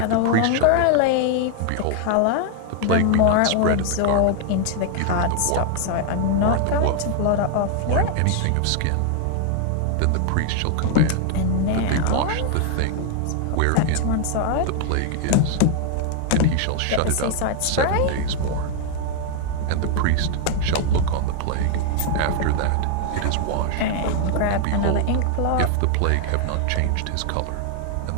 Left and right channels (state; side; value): different; both; correlation 0.00